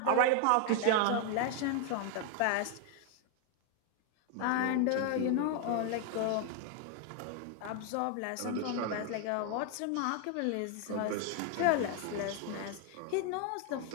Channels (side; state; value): both; different; correlation 0.01